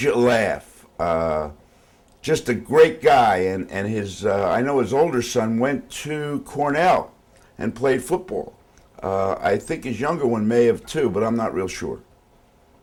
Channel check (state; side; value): identical; both; correlation 1.00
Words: you laugh. Just a great guy. And his, I know his older son went to Cornell and played football. I think his younger one may have too, but I'm not real sure.